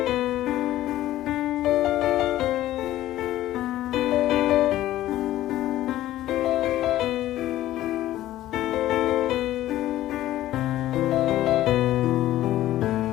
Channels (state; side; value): quieter; right; 14.3 dB